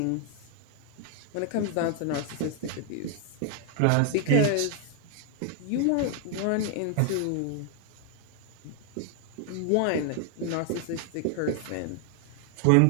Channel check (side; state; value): both; different; correlation 0.00